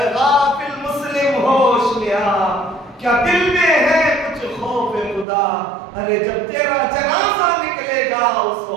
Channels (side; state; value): left; drops out; at 5.2 s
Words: غافل مسلم ہوش میں آ، کیا دل میں ہے کچھ خوف خدا؟ ارے جب تیرا جنازہ نکلے گا اس